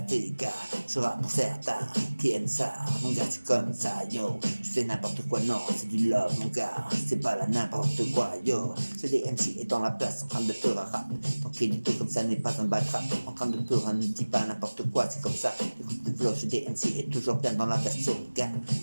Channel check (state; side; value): inverted; both; correlation -1.00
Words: gars. Je rappe pour certains qui aiment ça, mon gars, c'est comme ça, yo. Je fais n'importe quoi, non, c'est du love, mon gars. C'est pas là n'importe quoi, yo. C'est des MC est dans la place, en train de faire un rap. Tranquillito comme ça n'est pas un batrap. En train de pleurer, ne dis pas n'importe quoi, c'est comme ça. Écoute le flow, chez DMC est toujours bien dans la version, gars.